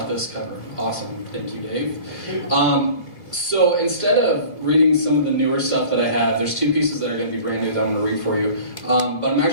this cover. Awesome. Thank you, Dave. So instead of reading some of the newer stuff that I have, there's two pieces that are going to be brand new that I'm going to read for you. But I'm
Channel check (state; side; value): late; right; 1.9 ms